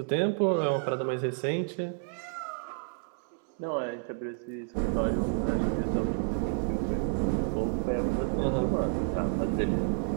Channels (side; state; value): left; silent; 58 dB below the other